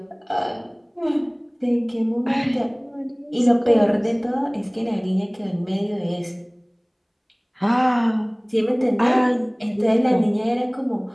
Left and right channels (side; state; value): both; identical; correlation 1.00